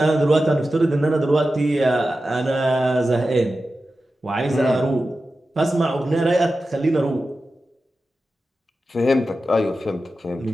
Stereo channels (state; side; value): normal; both; correlation 0.93